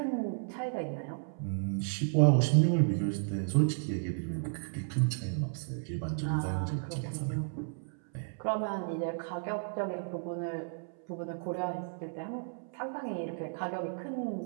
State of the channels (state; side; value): silent; left; 56 dB below the other